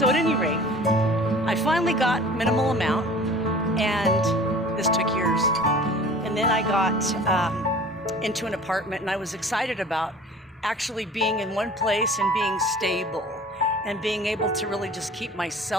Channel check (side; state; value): both; normal; correlation 0.45